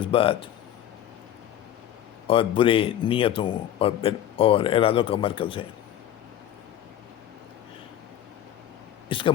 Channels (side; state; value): right; quieter; 11.4 dB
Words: اور برے نیتوں اور ارادوں کا مرکز ہے۔ اس کا